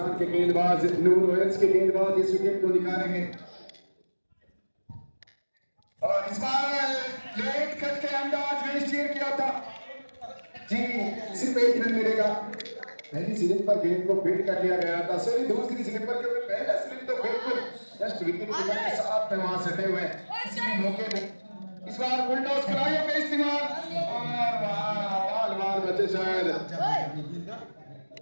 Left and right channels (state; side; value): inverted; both; correlation -1.00